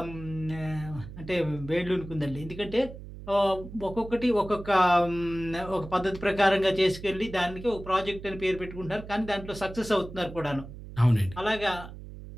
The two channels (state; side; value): noise; right; hum, 13 dB below the sound